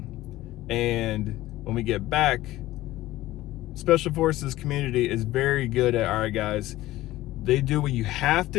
And when we get back, Special Forces community is very good at, all right, guys, they do what you have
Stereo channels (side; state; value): right; quieter; 16.4 dB